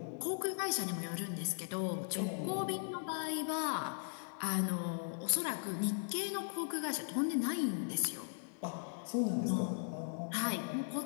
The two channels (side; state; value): right; silent; digital silence